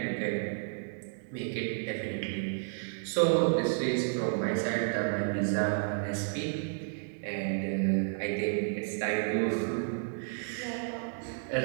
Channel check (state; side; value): silent; left; 57 dB below the other